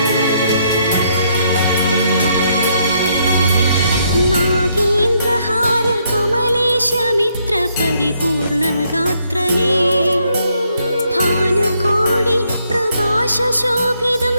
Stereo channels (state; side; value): inverted; both; correlation -0.73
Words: नागेन्द्रहार कमलेशमित्र परिपूर्णगात्रने भानुकोटि प्रकाशशोभितं